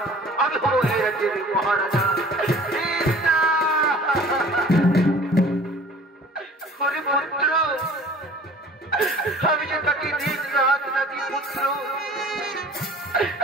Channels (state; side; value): normal; both; correlation 0.48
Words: আমি হব এই রাজ্যের মহারাজা। পুত্র আমি যে তাকে দিন রাত নাকি পুত্র,